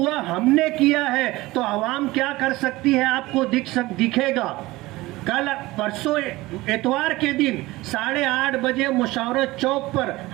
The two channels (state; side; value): quieter; left; 19.6 dB